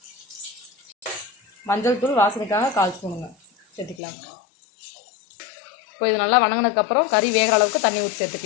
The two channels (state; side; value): drops out; right; at 4.0 s